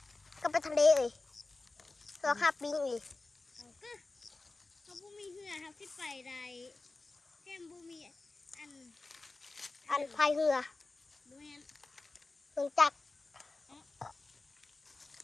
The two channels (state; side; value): quieter; right; 3.4 dB